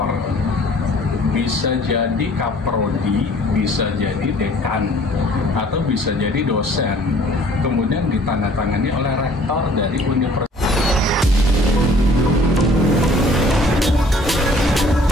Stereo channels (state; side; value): normal; both; correlation 0.54